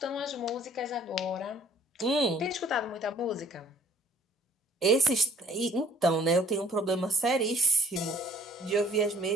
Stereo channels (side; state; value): both; normal; correlation 0.55